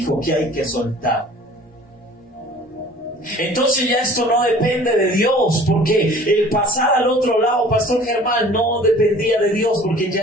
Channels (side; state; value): both; normal; correlation 0.48